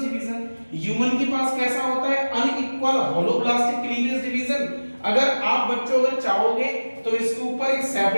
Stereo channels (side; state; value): both; inverted; correlation -1.00